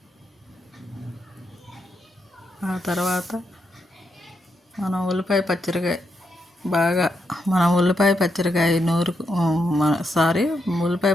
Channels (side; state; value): both; normal; correlation 0.82